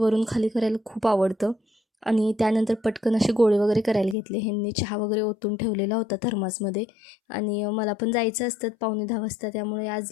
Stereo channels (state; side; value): drops out; right; at 4.2 s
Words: खाली करायला खूप आवडतं. आणि त्यानंतर पटकन असे गोळे वगैरे करायला घेतले. ह्यांनी चहा वगैरे ओतून ठेवलेला होता थर्मासमध्ये. आणि मला पण जायचं असतं 9:45 वाजता, त्यामुळे आज